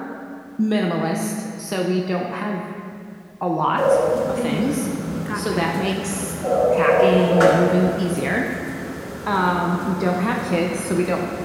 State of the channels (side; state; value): both; identical; correlation 1.00